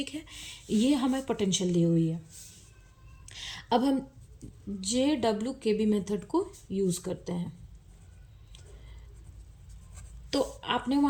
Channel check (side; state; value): both; identical; correlation 1.00